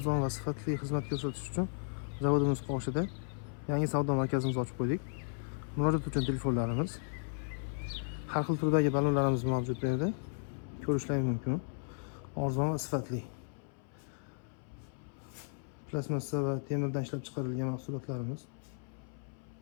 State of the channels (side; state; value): right; silent; 54 dB below the other